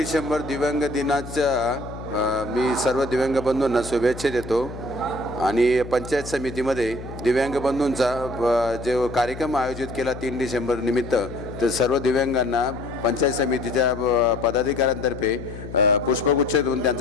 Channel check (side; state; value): left; noise; hum, 11 dB below the sound